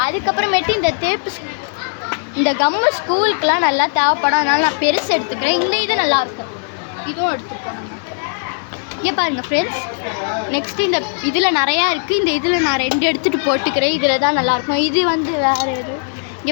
அதுக்கப்புறமேட்டு இந்த டேப்பு, இந்த கம்மு ஸ்கூலுக்கெலாம் நல்லா தேவைப்படும், அதனால் நான் பெருசு எடுத்துக்கிறேன். இந்த இது நல்லாயிருக்கும், இதுவும் எடுத்துப்பேன். இங்கே பாருங்கள் ஃப்ரெண்ட்ஸ், நெக்ஸ்ட்டு இந்த இதில் நிறையா இருக்குது. இந்த இதில் நான் 2 எடுத்துகிட்டு போட்டுக்கிறேன், இதில் தான் நல்லாயிருக்கும். இது வந்து வேறு எது,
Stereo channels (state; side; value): silent; right; digital silence